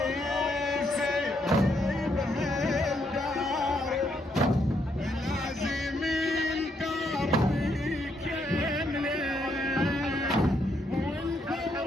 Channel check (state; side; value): normal; both; correlation 0.75